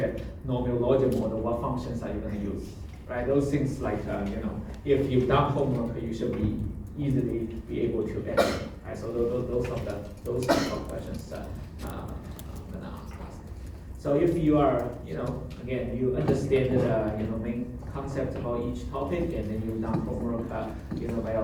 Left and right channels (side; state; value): both; identical; correlation 1.00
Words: logic model, what functions are you going to use, right? Those things like, if you've done homework, you should be easily be able to answer, right? So those type of questions I'm going to ask. So if you are, again, you understand the, main concept about each topic, and then you've done homework, by